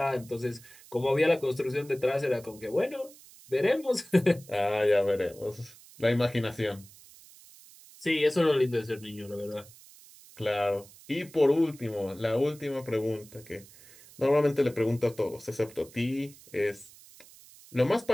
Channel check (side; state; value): right; noise; hiss, 22 dB below the sound